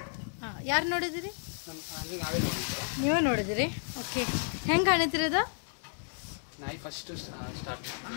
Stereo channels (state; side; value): silent; right; 56 dB below the other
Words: ಹಾಂ, ಯಾರು ನೋಡಿದಿರಿ? ನೀವೇ ನೋಡಿದಿರಿ? ओके, ಹೆಂಗೆ ಕಾಣಿದ್ರಿ ಅದು?